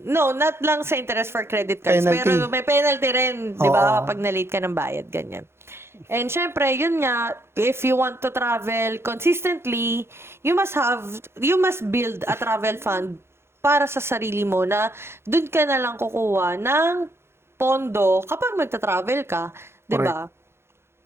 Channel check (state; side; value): late; left; 0.12 ms